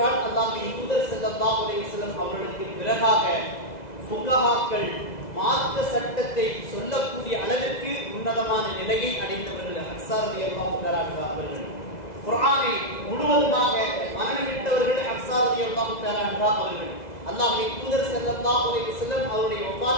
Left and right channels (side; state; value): right; late; 2.0 ms